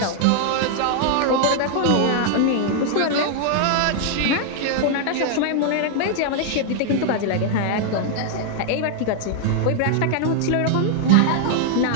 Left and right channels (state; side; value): different; both; correlation -0.01